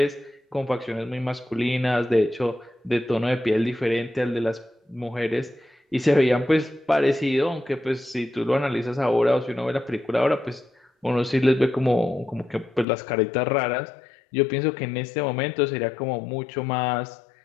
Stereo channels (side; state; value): right; drops out; at 12.9 s